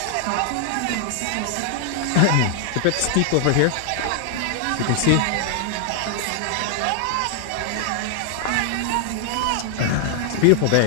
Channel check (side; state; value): both; different; correlation 0.00